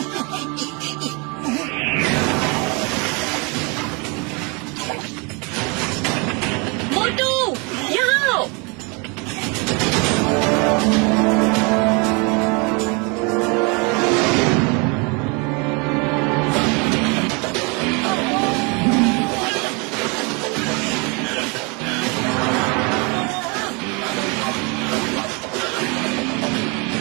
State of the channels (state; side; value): quieter; left; 31.0 dB